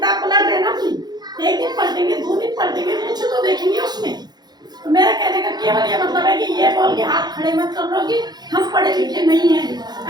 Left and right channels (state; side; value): late; left; 0.20 ms